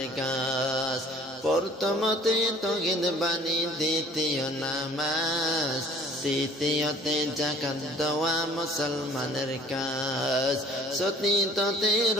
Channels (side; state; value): both; normal; correlation 0.52